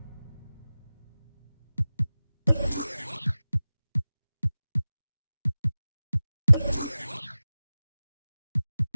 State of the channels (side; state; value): both; inverted; correlation -0.97